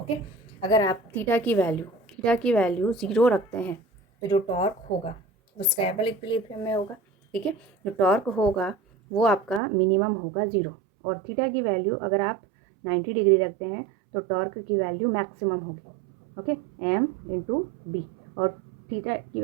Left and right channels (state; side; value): drops out; left; at 9.6 s